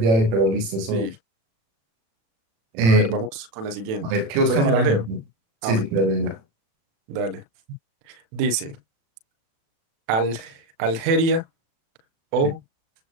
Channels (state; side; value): late; left; 36 ms